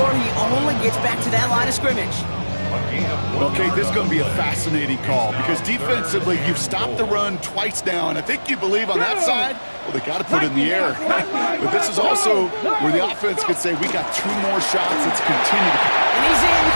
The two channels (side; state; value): both; inverted; correlation -1.00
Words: He only gets back to that line of scrimmage. Okay, this is going to be a fascinating call because defensively, you've stopped the run twice now, and I think you believe on that side, well, they got to put it in the air. But this is also where the offense could say, we got 2 more shots. Let's continue to... And he's in